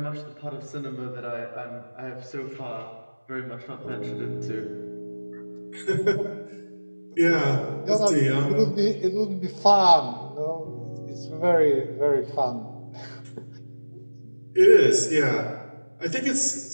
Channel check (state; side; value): inverted; both; correlation -1.00